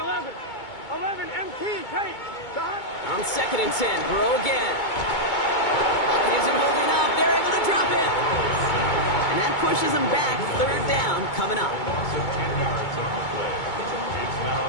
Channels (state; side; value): late; right; 2.2 ms